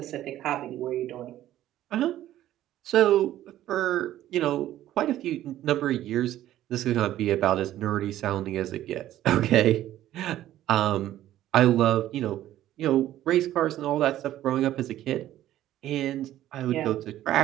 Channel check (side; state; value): left; quieter; 13.2 dB